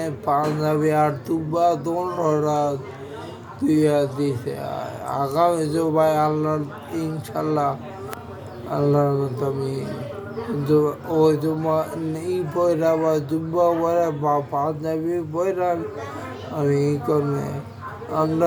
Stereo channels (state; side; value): identical; both; correlation 1.00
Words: পাঞ্জাবি আর তুব্বা দোনোটা তুইয়া দিছে। আগামী জুবাই আল্লাহ ইনশাল্লাহ আল্লাহর মতো আমি ওই জুম্মা ই বইরা বা জুব্বা বইরা বা পাঞ্জাবি বইরা আমি ই করবে।